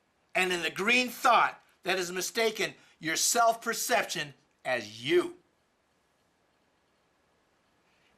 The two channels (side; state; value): both; identical; correlation 1.00